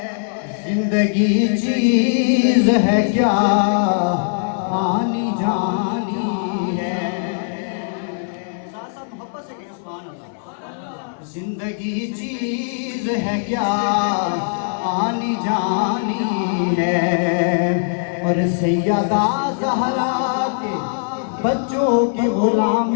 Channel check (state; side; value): silent; right; 60 dB below the other